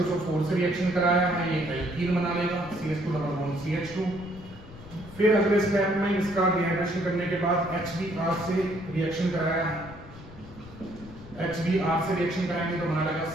से रिएक्शन कराया है, ये एल्कीन बना लेगा, CH2CH2। फिर अगले स्टेप में इसका डिहाइड्रेशन करने के बाद HBr से रिएक्शन कराया है, HBr से रिएक्शन कराएंगे तो बना लगा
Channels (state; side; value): noise; left; rumble, 17 dB below the sound